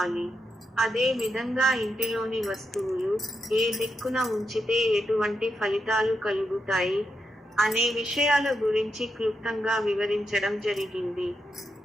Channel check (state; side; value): normal; both; correlation 0.85